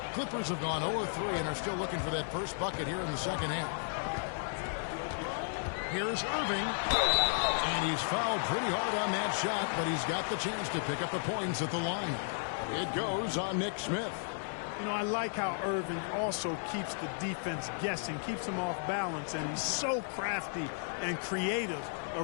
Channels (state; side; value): silent; right; 55 dB below the other